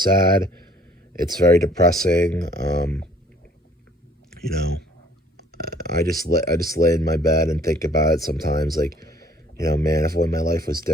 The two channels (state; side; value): normal; both; correlation 0.57